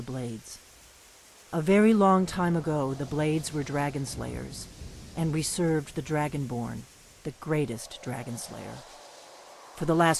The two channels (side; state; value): both; identical; correlation 1.00